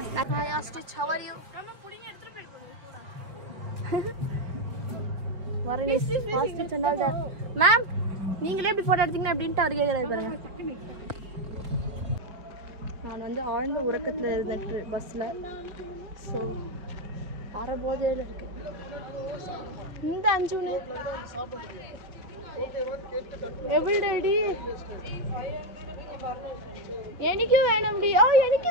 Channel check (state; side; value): late; left; 5.1 ms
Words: Hi Stitch, how are you? வரனே ஹாஸ்பிடல் சென்றால் தான். மேம் நீங்களே எப்படி போட்டோ எடுத்தீங்க அப்படினு அவர் கேக்குறாரு பாருங்க. நான் வந்து ஆழ்ந்த உறக்கத்துல இருந்தேன் பஸ்ல. சோ அரபோதையில இருக்கு. இந்த அஞ்சுனே எவ்வளவு டேடி എനിക്ക് വേണംടി ഓ എനിക്ക്